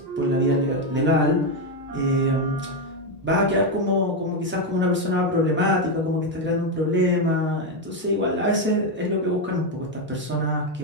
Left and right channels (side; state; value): both; normal; correlation 0.07